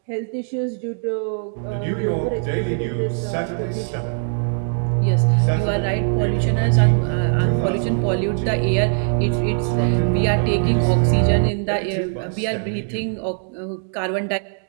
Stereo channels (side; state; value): left; silent; 57 dB below the other